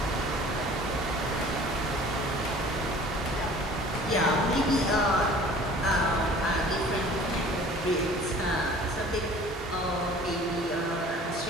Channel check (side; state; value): both; normal; correlation 0.48